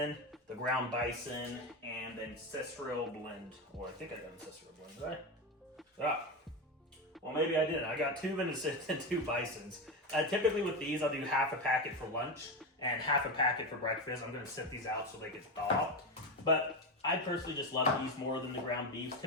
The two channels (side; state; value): both; normal; correlation 0.16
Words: the ground bison, and the ancestral blend. Or I think I got ancestral blend, did I? Ah. Well, maybe I didn't. I got 2 venison and 2 bisons. Typically with these, I'll do half a packet for lunch and half a packet for breakfast. I'm going to set these out so they get thawed. But I personally just love these more than the ground beef.